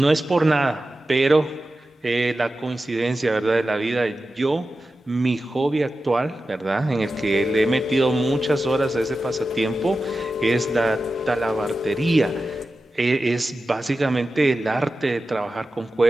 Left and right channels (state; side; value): normal; both; correlation 0.93